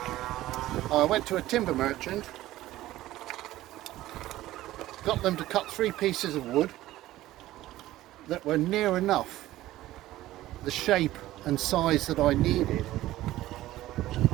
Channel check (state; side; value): quieter; left; 15.5 dB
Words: I went to a timber merchant, got them to cut 3 pieces of wood that were near enough the shape and size that I needed.